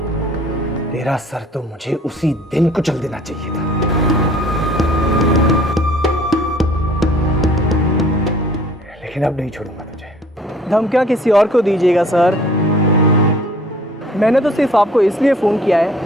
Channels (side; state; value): both; normal; correlation 0.53